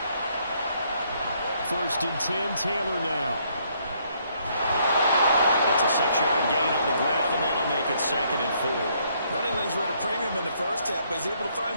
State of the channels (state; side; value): inverted; both; correlation -0.69